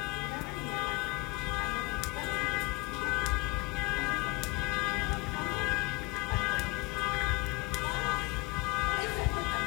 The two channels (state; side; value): quieter; right; 24.6 dB